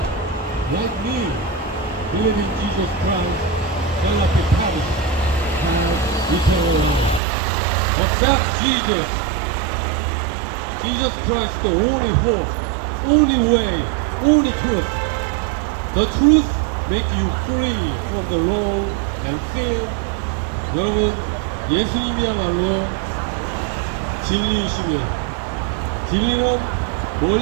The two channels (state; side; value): drops out; left; at 7.2 s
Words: like me, believe in Jesus Christ, shall not be perished, have eternal life. Accept Jesus. Jesus Christ, the only hope, only way, only truth. The truth makes you free from the law and sin. 여러분, 예수님이야말로 진리이시며, 진리는